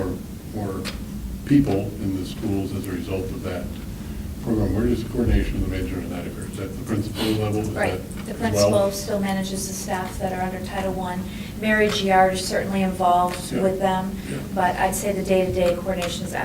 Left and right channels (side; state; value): both; identical; correlation 1.00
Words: people in the schools as a result of that program. Where does the coordination of the management of that occur? Is that the principal level? Is Right, that the as well? principal still manages the staff that are under Title I. Mary Giard is certainly involved Yeah. with them, Yeah. but I'd say the day-to-day coordination is